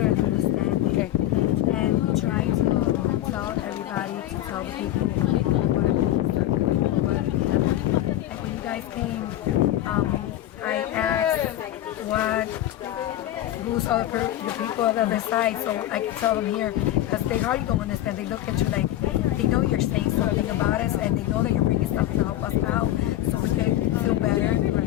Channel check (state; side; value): quieter; right; 13.5 dB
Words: and understand it. And we try to tell everybody, to tell the people what it means, what it happened. Like when you guys came, I asked who's all the people on the other side, so I can tell them here, because they hardly don't understand. They look at you like they know you're saying something about us, and they know that you're bringing stuff to help us out, so we can feel better